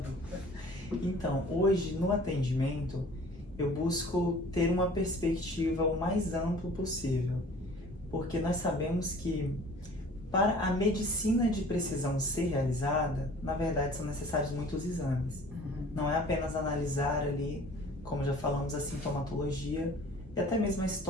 Então, hoje, no atendimento, eu busco ter uma perspectiva o mais ampla possível, porque nós sabemos que para a medicina de precisão ser realizada, na verdade são necessários muitos exames. Não é apenas analisar ali, como já falamos, a sintomatologia e até mesmo a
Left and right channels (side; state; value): both; normal; correlation 0.48